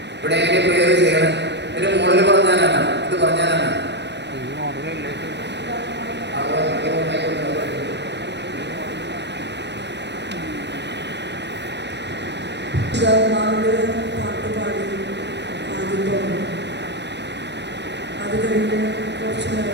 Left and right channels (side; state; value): left; late; 0.50 ms